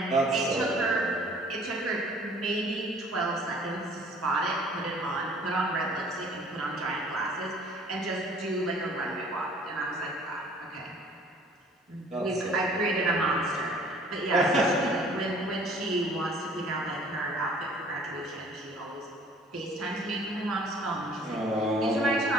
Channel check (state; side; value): normal; both; correlation 0.53